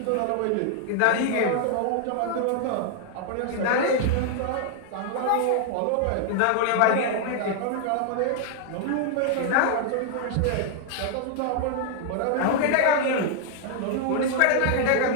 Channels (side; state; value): both; different; correlation 0.00